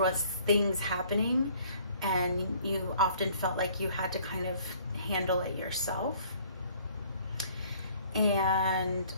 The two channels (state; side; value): inverted; both; correlation -0.57